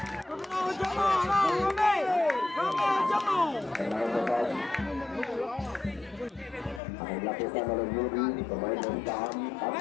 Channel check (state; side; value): drops out; right; at 6.8 s